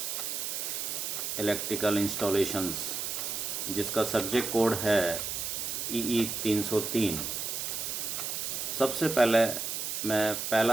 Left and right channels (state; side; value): noise; right; hiss, 3 dB below the sound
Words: electrical installations, जिसका सब्जेक्ट कोड है EE 303। सबसे पहले मैं